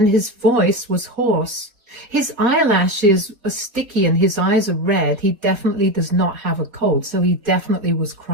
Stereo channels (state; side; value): late; left; 4.1 ms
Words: his voice was hoarse. His eyelashes are sticky and his eyes are red. He definitely does not have a cold, so he definitely was